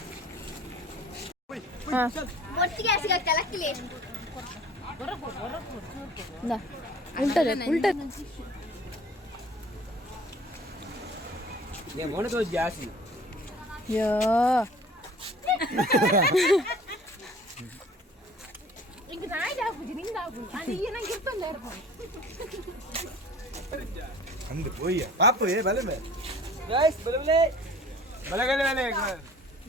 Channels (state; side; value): normal; both; correlation 0.48